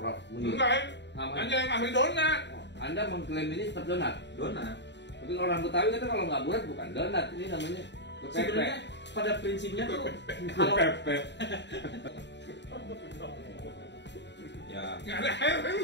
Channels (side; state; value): right; late; 0.51 ms